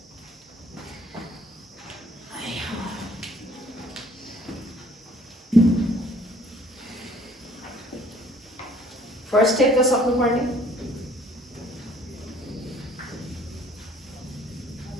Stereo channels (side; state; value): both; normal; correlation 0.57